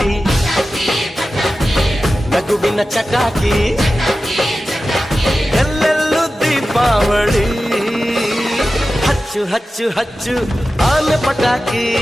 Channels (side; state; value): both; normal; correlation 0.94